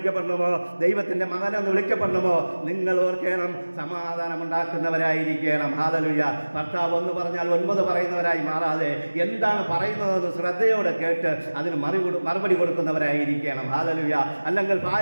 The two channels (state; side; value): inverted; both; correlation -1.00